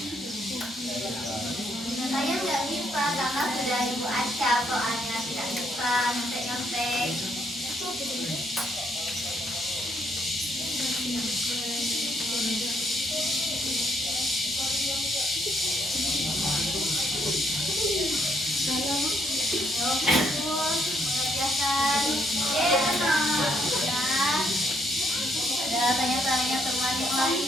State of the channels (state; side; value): normal; both; correlation 0.72